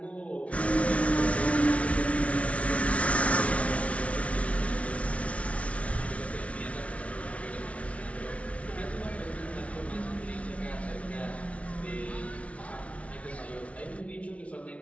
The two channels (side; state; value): right; late; 0.064 ms